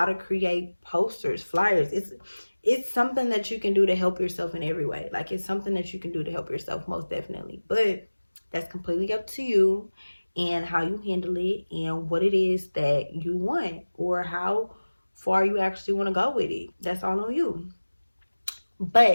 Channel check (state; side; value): inverted; both; correlation -1.00